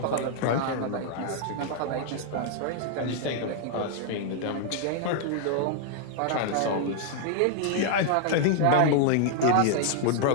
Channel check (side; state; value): both; different; correlation 0.00